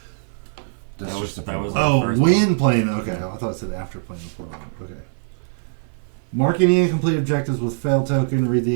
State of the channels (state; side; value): silent; left; 56 dB below the other